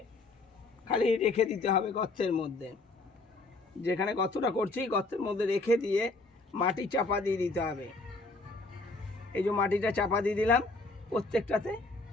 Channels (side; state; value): right; quieter; 3.3 dB